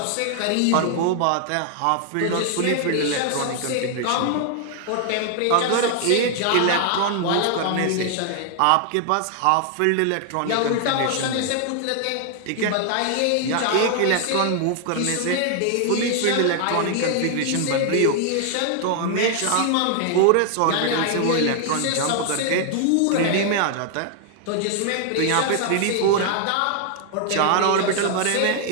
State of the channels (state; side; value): different; both; correlation 0.00